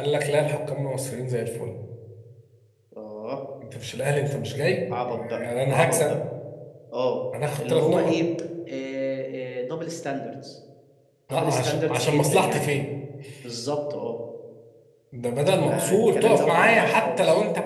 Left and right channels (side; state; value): both; identical; correlation 1.00